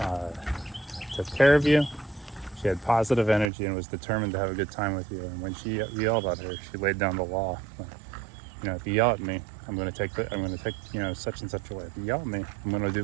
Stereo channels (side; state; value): left; drops out; at 3.5 s